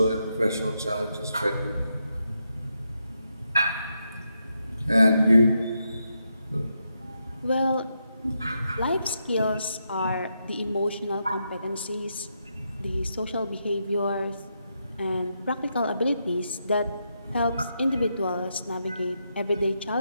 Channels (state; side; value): inverted; both; correlation -0.82